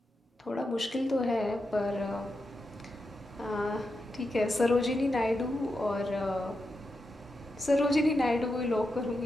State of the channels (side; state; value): both; normal; correlation 0.87